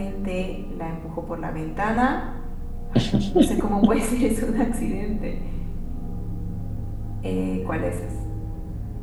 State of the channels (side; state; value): both; identical; correlation 1.00